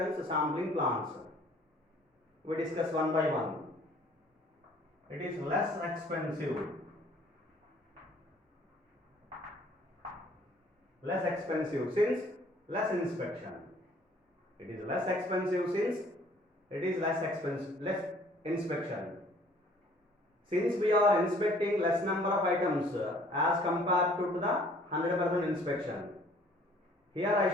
sampling plans. We discuss one by one. It is less expensive. Less expensive since less inspection. It is less expensive since it is less inspection. Since we are inspecting less number of items as compared to the 100% inspection. Here I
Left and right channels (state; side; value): normal; both; correlation 0.57